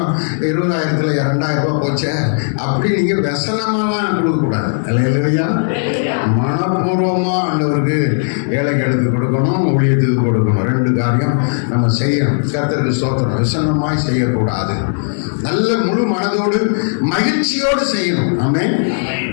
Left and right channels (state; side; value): silent; right; digital silence